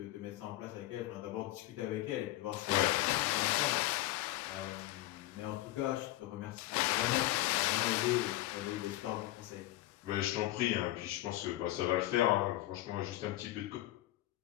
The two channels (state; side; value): quieter; right; 16.4 dB